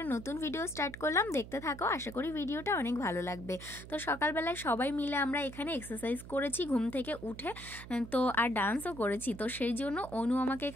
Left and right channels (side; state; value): right; noise; hum, 14 dB below the sound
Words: নতুন ভিডিও স্টার্ট করলাম। দেখতে থাকো, আশা করি ভিডিওটা অনেক ভালো লাগবে। তো সকালবেলায় সবাই মিলে আমরা এখানে এক্সারসাইজ করেছি ঘুম থেকে উঠে, তো আর ডান্সও করেছি। তো সেই জন্য অনু আমাকে